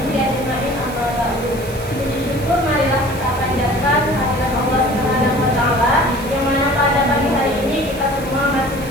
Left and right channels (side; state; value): right; noise; hiss, 17 dB below the sound